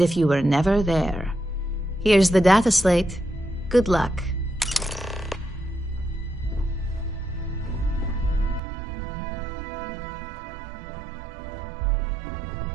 if you were never there. Here's the data slate. Good luck.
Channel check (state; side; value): drops out; left; at 8.6 s